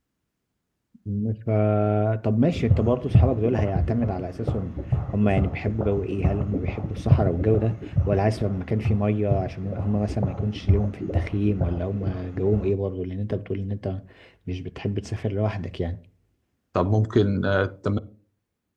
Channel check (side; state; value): both; identical; correlation 1.00